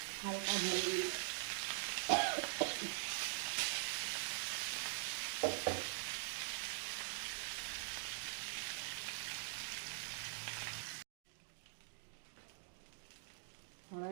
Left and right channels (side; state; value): left; silent; digital silence